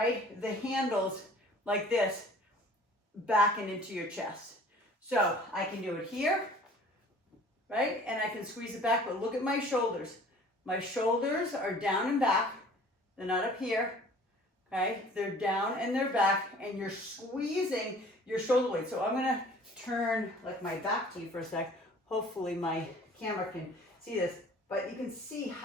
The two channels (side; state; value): both; normal; correlation 0.50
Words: the handles like this back and into your chest. So I can do it here, right? And I can squeeze it back, but look at my shoulders. My shoulders are down and back. They're not up here, okay? They're down and they're back, and you're squeezing your shoulder blades. So I'm gonna turn like my back to you for a sec. Hopefully my camera can see this, but you can see